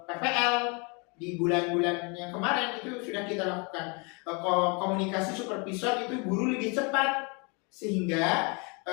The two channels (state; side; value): quieter; right; 31.8 dB